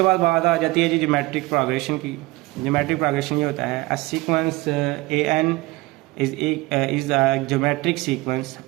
बाद बात आ जाती है जी ज्योमेट्रिक प्रोग्रेशन की। ज्योमेट्रिक प्रोग्रेशन ये होता है, a sequence an is a geometric sequence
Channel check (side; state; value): left; quieter; 21.1 dB